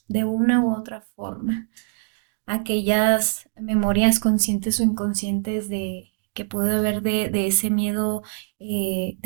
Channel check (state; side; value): silent; left; digital silence